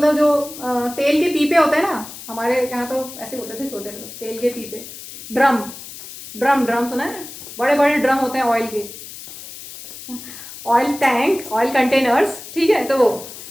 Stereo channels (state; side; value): noise; left; hiss, 13 dB below the sound